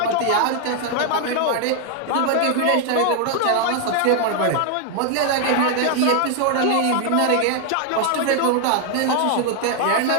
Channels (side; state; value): both; different; correlation 0.00